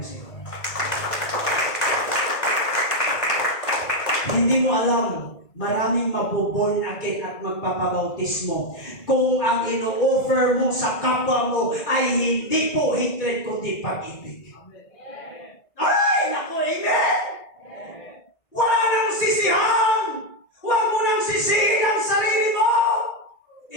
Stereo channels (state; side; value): late; right; 2.0 ms